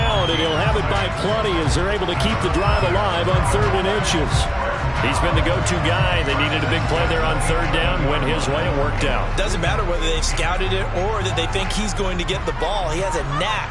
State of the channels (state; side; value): identical; both; correlation 1.00